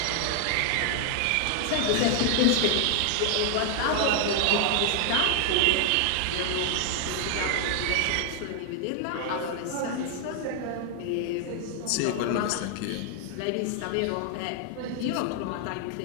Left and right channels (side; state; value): both; different; correlation 0.00